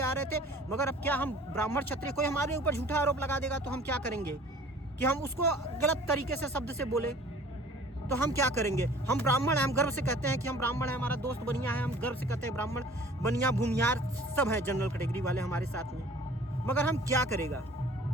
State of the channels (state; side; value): normal; both; correlation 0.49